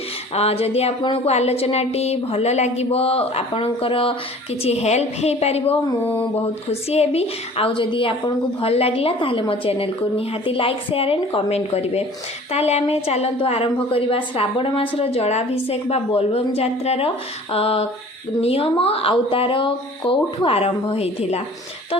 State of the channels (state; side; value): normal; both; correlation 0.47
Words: जदि आपण को आलोचनाटी भल लागिबो आपणकर किछि हेल्प हेइ पारिबो मु बहुत खुशी हेबि। आ जदि आपण को भल लागिला ताहाले मो चैनल को निहाती लाइक शेयर एंड कमेंट करेंगे। ताहले आमे चलतु आरंभ करवा श्रावण मासर जलाभिषेक बा बोलबम यात्रार नियम आउ तार कौठु आरंभ होइथिला। तो